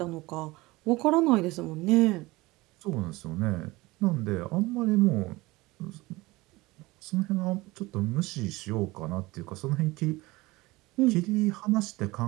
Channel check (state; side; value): quieter; left; 21.1 dB